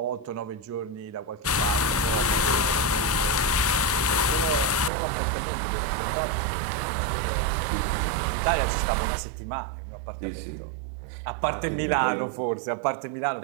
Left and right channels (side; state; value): left; drops out; at 4.9 s